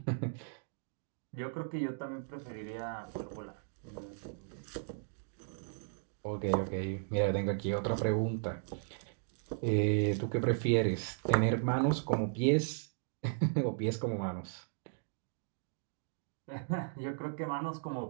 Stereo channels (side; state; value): left; silent; digital silence